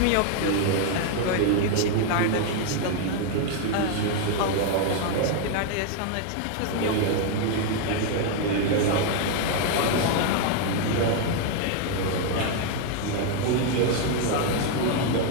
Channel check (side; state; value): both; different; correlation 0.00